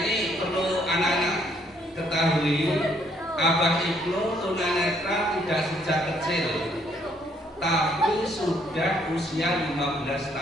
perlu anak-anak ketahui, Abah Ibnu tunanetra tidak sejak kecil, tapi sudah usia 15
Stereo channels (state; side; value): normal; both; correlation 0.68